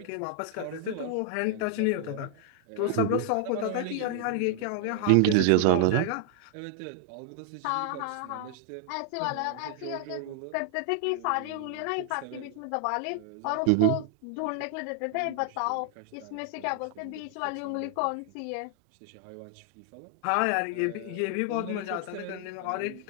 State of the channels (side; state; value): both; different; correlation 0.00